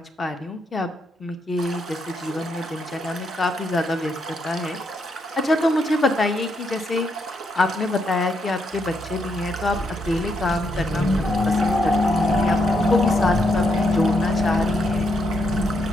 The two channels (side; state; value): both; normal; correlation 0.78